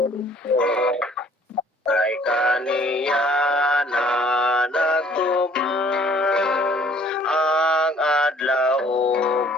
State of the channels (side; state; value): both; normal; correlation 0.57